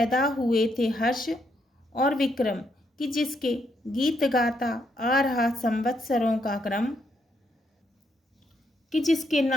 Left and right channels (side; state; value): both; normal; correlation 0.76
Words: हुए थे हर्ष और विक्रम, कि जिसके गीत गाता आ रहा संवत्सरों का क्रम, कि जिसके